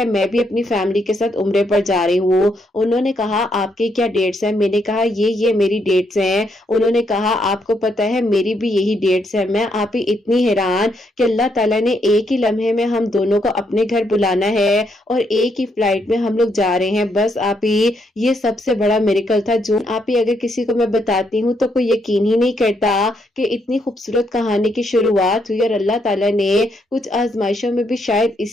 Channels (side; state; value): both; normal; correlation 0.76